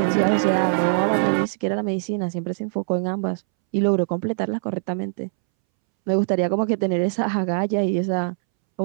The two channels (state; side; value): silent; left; 64 dB below the other